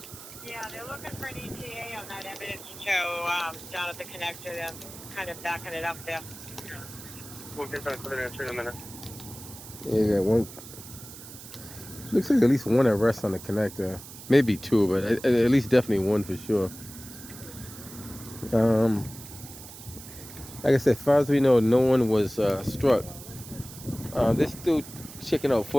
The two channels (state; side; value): noise; right; hiss, 15 dB below the sound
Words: Yeah, they're looking for an ETA on that evidence show down at the connector. They're kind of backing it up there. We'll get back with an answer in a minute. Yeah, you got one. Looks like at least one arrest on the connector. Maybe two, but at least definitely one for sure. Like I said, as far as we know, no one was struck. They're still checking out